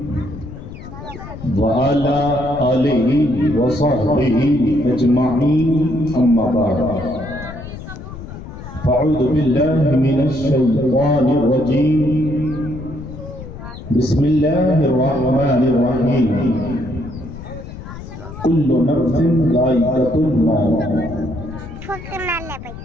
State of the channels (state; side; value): noise; left; rumble, 12 dB below the sound